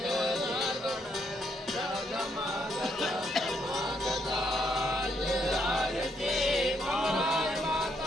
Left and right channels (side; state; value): both; normal; correlation 0.75